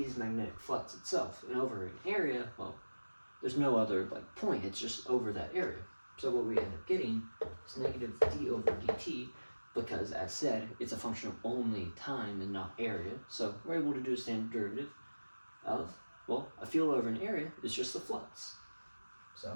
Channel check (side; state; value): both; inverted; correlation -1.00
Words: magnetic flux itself. And over an area, well, there's no other point, it's just over that area. So what we end up getting is negative d over dt, because as said, it's a function of only time and not area. So we're able to do a standard derivative of, well, a field over an area is just the flux. So